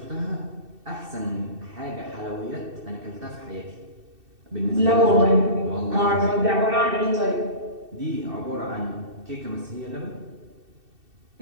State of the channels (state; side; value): late; left; 2.7 ms